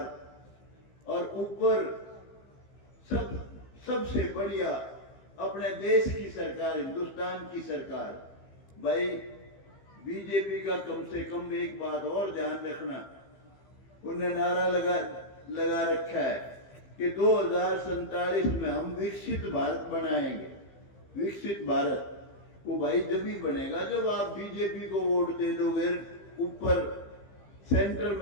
और ऊपर सबसे बढ़िया अपने देश की सरकार, हिंदुस्तान की सरकार। भाई बीजेपी का कम से कम एक बात और ध्यान रखना, उन्हें नारा लगा रखा है कि 2047 में हम विकसित भारत बनाएंगे। विकसित भारत वो भाई जब ही बनेगा जब आप बीजेपी को वोट दे दोगे, ऊपर सेंटर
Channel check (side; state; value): right; late; 15 ms